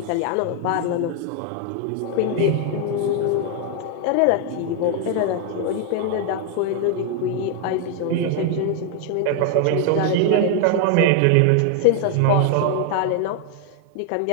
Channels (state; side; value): different; both; correlation 0.01